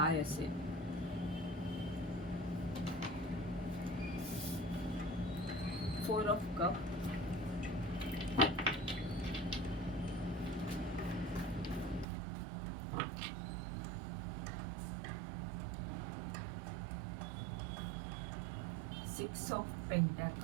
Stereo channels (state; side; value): drops out; left; at 12.1 s